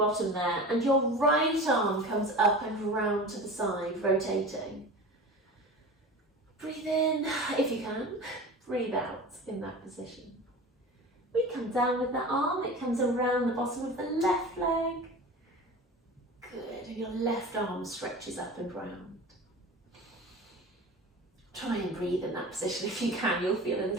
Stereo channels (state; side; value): normal; both; correlation 0.34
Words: there, and your right arm comes up and round to the side, rotating. Breathe in if you can, breathe out in that position. We come down with that arm, it comes around the bottom of the left leg. Good, and your left arm stretches up and round. Try and breathe in that position if you can. You'll feel a